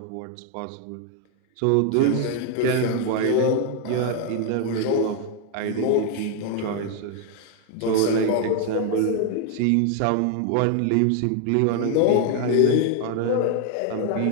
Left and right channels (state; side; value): different; both; correlation 0.00